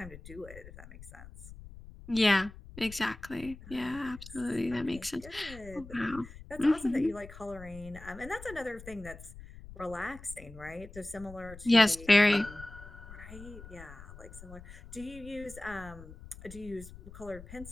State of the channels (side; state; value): left; noise; rumble, 16 dB below the sound